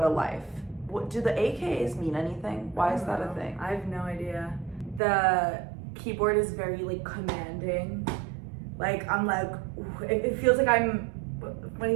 a life. What do the AKAs mean anything? Why is that a thing? I have no idea. The keyboard is very like commanding. Like I'm like, it feels like I'm when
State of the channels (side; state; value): left; drops out; at 5.0 s